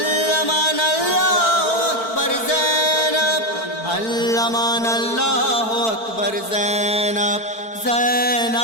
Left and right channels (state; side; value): late; right; 4.5 ms